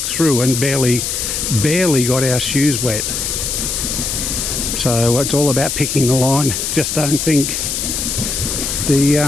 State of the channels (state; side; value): noise; left; hiss, 2 dB below the sound